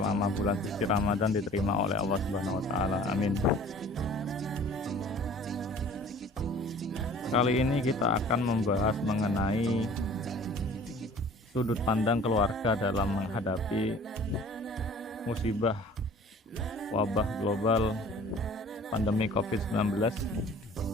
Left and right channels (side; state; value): both; normal; correlation 0.48